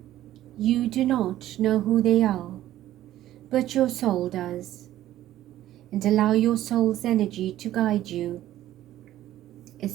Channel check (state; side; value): quieter; left; 13.5 dB